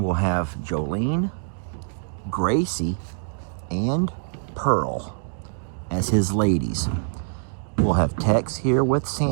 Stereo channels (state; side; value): silent; left; digital silence